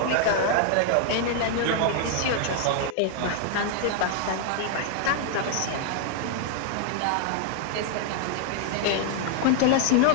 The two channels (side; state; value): both; different; correlation 0.00